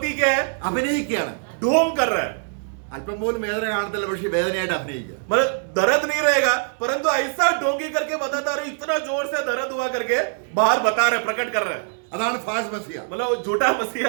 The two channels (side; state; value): left; silent; digital silence